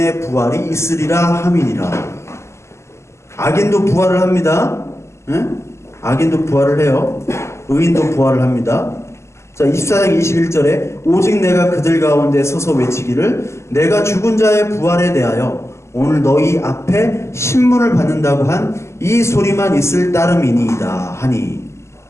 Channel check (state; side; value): late; right; 0.13 ms